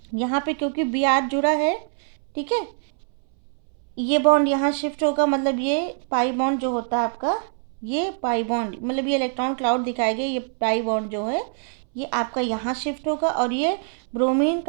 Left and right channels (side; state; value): left; silent; 63 dB below the other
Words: यहाँ पे क्योंकि Br जुड़ा है, ठीक है, ये बॉन्ड यहाँ शिफ्ट होगा, मतलब ये पाई बॉन्ड जो होता है आपका, ये पाई बॉन्ड मतलब ये इलेक्ट्रॉन क्लाउड दिखाएगा, ये पाई बॉन्ड जो है ये आपका यहाँ शिफ्ट होगा और ये ब्रोमीन